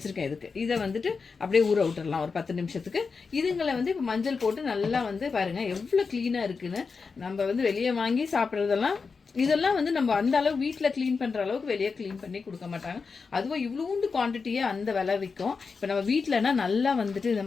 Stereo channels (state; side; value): quieter; right; 4.9 dB